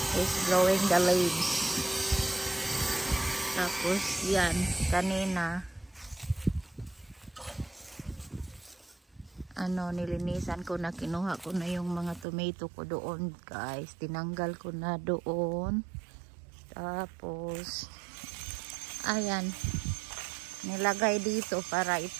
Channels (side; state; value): left; drops out; at 12.2 s